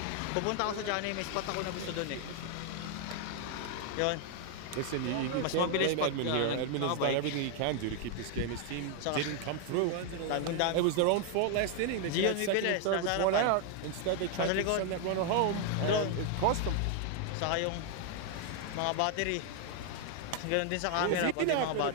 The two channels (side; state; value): both; different; correlation 0.00